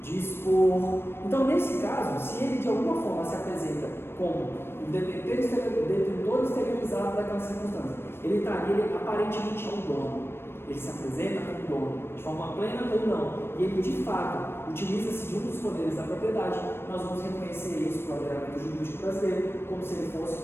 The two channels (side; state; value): right; late; 0.12 ms